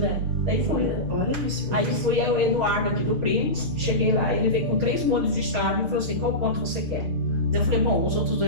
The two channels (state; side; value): late; left; 6.6 ms